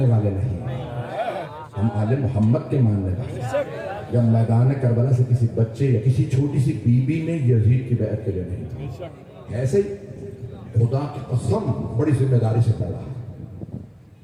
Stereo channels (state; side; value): identical; both; correlation 1.00